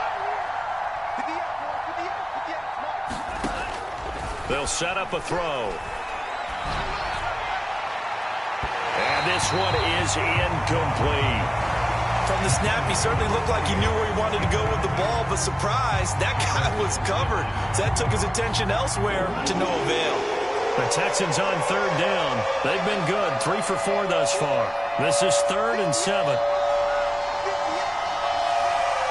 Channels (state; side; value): identical; both; correlation 1.00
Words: They'll set up a throw. And this one is incomplete. From the snap, he certainly looked like he knew where he wanted to go with the ball, but surprise, that guy was covered. So that took his attention elsewhere to no avail. The Texans on 3rd down. They've been good, 3 for 4 thus far. This is 3rd and 7.